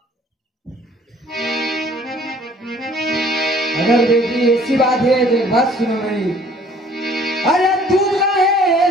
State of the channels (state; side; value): normal; both; correlation 0.56